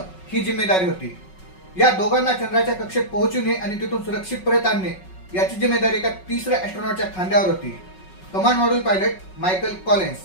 ही जिम्मेदारी होती. या दोघांना चंद्राच्या कक्षेत पोहोचवणे आणि तिथून सुरक्षित परत आणणे याची जिम्मेदारी एका तिसऱ्या एस्ट्रॉनॉटच्या खांद्यावर होती. Command module pilot Michael Collins,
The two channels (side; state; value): right; late; 5.4 ms